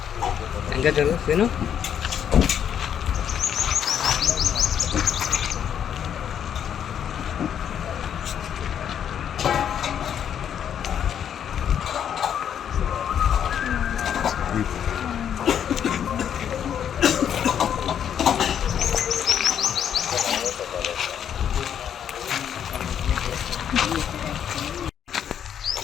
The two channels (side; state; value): right; quieter; 9.0 dB